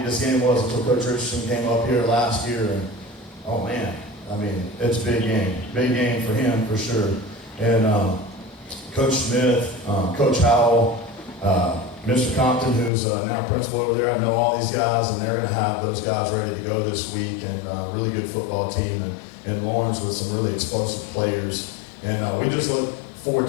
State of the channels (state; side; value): drops out; right; at 12.9 s